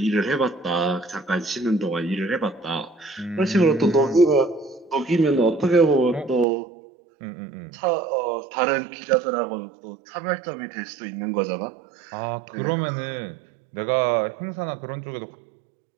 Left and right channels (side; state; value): left; drops out; at 6.5 s